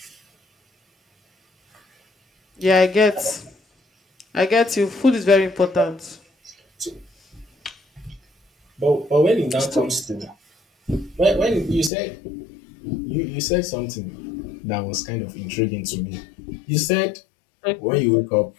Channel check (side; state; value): right; drops out; at 11.9 s